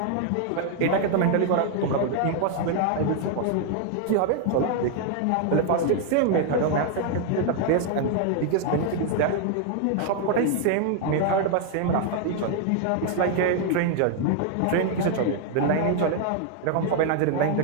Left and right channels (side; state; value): both; different; correlation 0.00